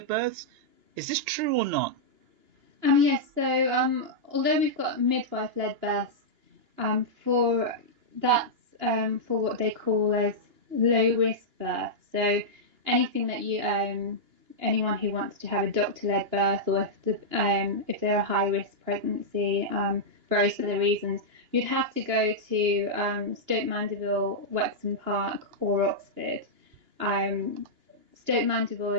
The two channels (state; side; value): late; left; 2.9 ms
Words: births. Is this true or not? Yes, so although we've got midwife-led births, for that's for what they call as low-risk births. So anything that anyone who wants to have a doctor-led birth, or if they're a high-risk pregnancy, various other reasons, you'd have to go to Stoke Mandeville, Wexham Park, or Oxford. Stoke Mandeville